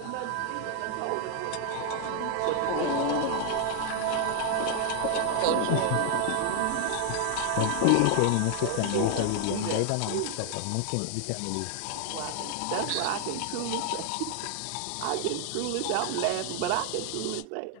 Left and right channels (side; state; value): both; different; correlation 0.00